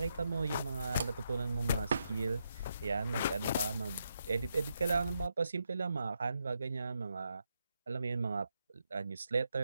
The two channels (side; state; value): both; inverted; correlation -0.82